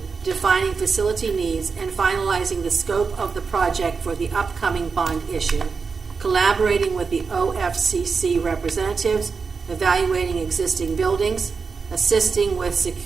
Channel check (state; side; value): quieter; left; 5.1 dB